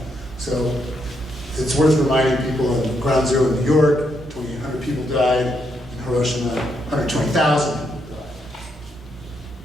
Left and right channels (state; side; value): normal; both; correlation 0.78